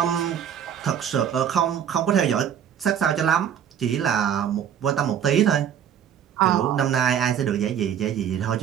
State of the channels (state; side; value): quieter; left; 9.0 dB